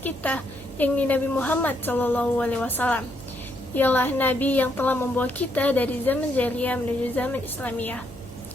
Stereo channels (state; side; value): noise; right; hum, 21 dB below the sound